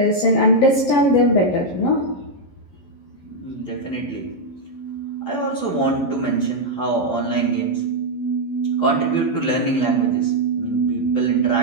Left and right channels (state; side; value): late; right; 11 ms